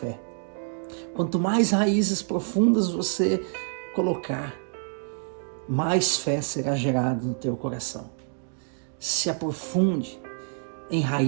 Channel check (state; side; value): silent; left; 60 dB below the other